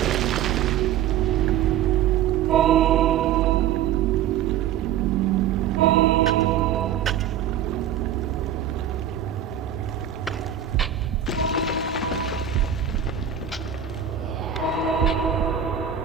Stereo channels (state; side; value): quieter; left; 9.7 dB